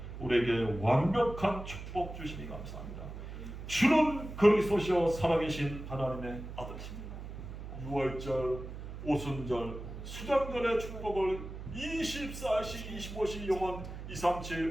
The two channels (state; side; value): noise; right; hum, 10 dB below the sound